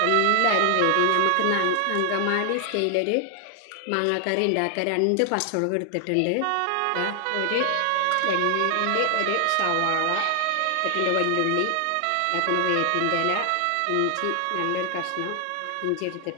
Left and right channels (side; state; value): both; different; correlation 0.00